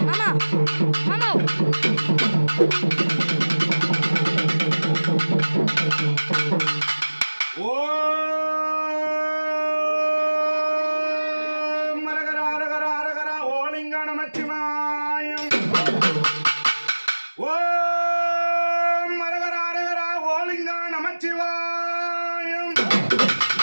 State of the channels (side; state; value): both; inverted; correlation -1.00